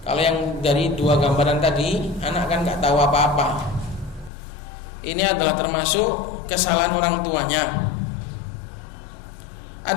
yang dari dua gambaran tadi, anak kan gak tahu apa-apa. Ini adalah termasuk kesalahan orang tuanya.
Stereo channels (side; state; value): right; drops out; at 4.3 s